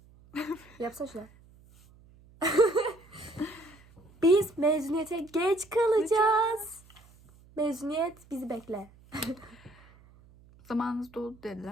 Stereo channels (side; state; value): right; noise; hum, 26 dB below the sound